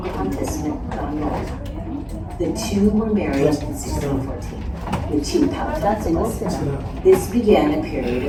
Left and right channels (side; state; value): both; identical; correlation 1.00